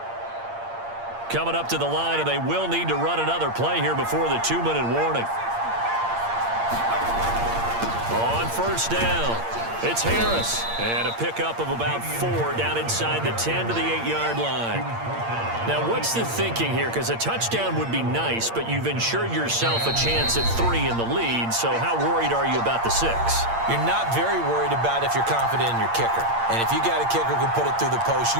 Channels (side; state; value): left; late; 8.7 ms